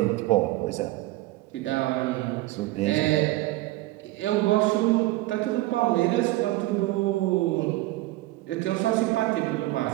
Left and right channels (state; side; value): quieter; left; 18.4 dB